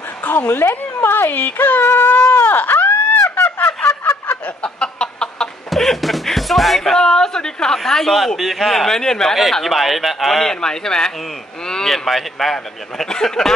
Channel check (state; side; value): normal; both; correlation 0.65